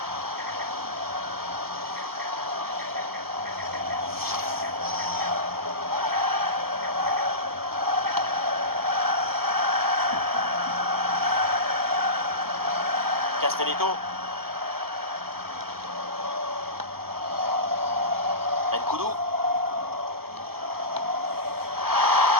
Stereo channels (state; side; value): late; left; 0.95 ms